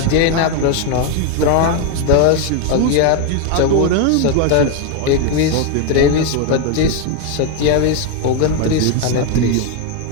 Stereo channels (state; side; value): different; both; correlation 0.01